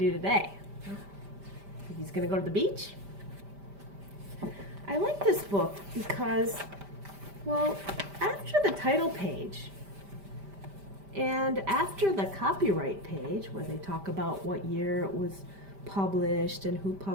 today? Think he's gonna go to the beach? I like this book because, well, after the title page and after the copyright page where they talk about what year it was published and who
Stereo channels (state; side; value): late; left; 5.1 ms